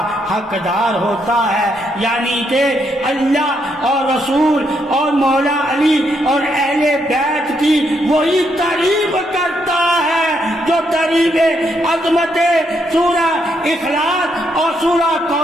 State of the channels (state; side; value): normal; both; correlation 0.77